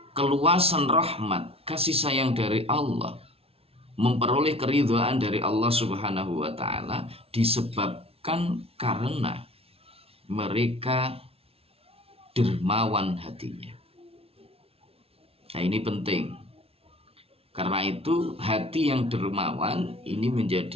keluasan rahmat kasih sayang dari Allah, memperoleh keridhaan dari Allah Subhanahu wa Ta'ala disebabkan karena mereka dermawan hatinya. Nah, ini penting. Karena itu hati yang dermawan ini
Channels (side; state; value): left; late; 0.28 ms